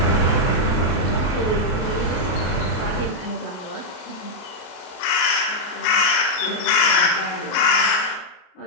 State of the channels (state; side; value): late; right; 33 ms